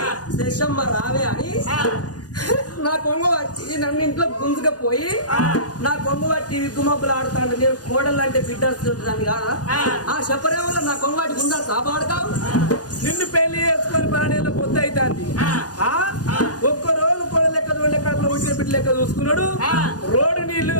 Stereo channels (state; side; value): late; right; 0.68 ms